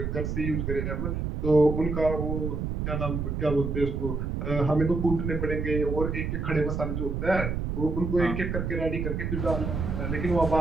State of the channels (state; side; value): noise; right; rumble, 2 dB below the sound